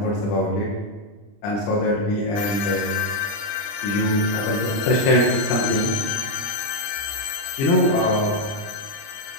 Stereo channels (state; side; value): late; right; 30 ms